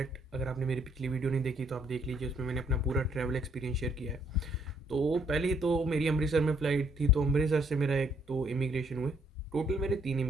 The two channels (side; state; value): both; normal; correlation 0.68